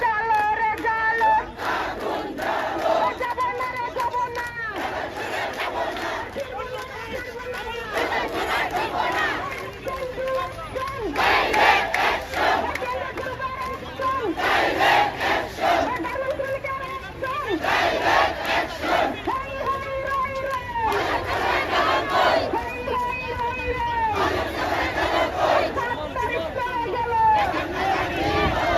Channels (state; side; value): identical; both; correlation 1.00